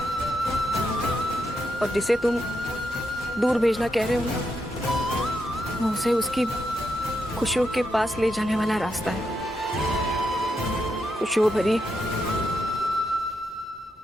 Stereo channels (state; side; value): normal; both; correlation 0.83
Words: और जिसे तुम दूर भेजना कह रहे हो ना, वो उसे उसकी खुशियों के पास ले जाने वाला रास्ता है। खुशियों भरी,